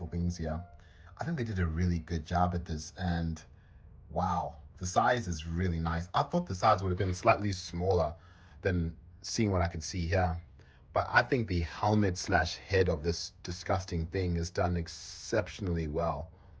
wings here. I think they did a really good job at this, and wow, the size is really nice. I thought the size would have been slightly smaller than seeing what I could see here. But I think the helmet slash head of this disgusting thing is done exceptionally well.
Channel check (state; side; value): identical; both; correlation 1.00